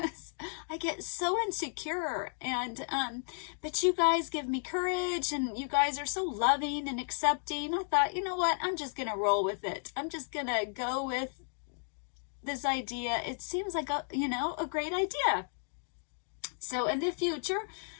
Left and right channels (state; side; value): silent; right; digital silence